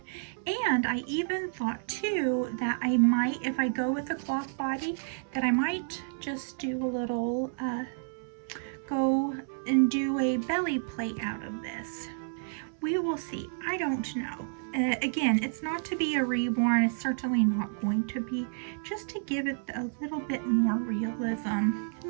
And I even thought too that I might, if I go with a cloth body, that I might just do a little, go and do a belly plate out of this. We will see. I don't know. Again, it's not to be a reborn. It's certainly not going to be. Just to give it a little bit more realism.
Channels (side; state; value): left; silent; 58 dB below the other